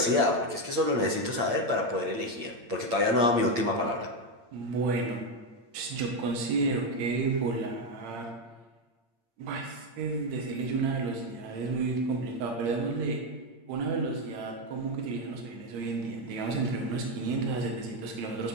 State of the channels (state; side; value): late; left; 8.7 ms